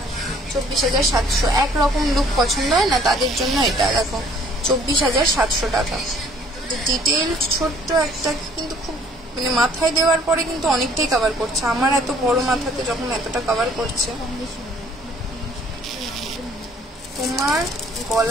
24,700 একরকম লুক পছন্দ হয় না, তাদের জন্য এটা দেখো 24,700 টাকা। ডিটেল ছোট্ট একটা কিন্তু খুব মানে মাথায় দেওয়ার পরে কিন্তু অনেকটাই কভার করছে। আমার এত বড় মাথাতে যখন এতটা কভার করছে। তোমার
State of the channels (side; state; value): both; normal; correlation 0.58